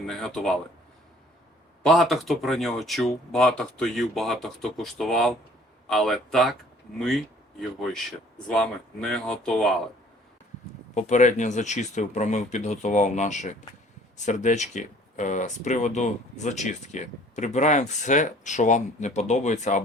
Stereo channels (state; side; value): normal; both; correlation 0.54